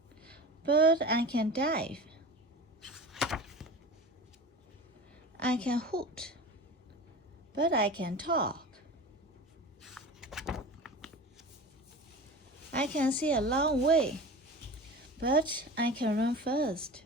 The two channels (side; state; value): both; normal; correlation 0.33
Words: but I can dive. I can hoot, but I can talk. I can see a long way, but I can run fast.